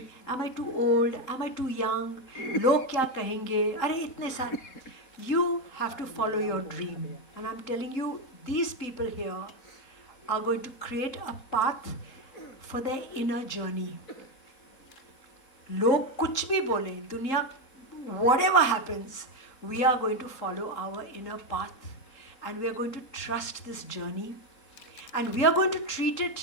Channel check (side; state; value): right; late; 3.8 ms